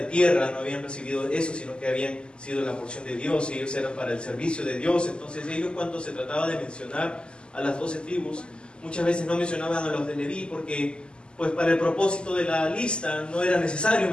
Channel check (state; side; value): late; right; 0.050 ms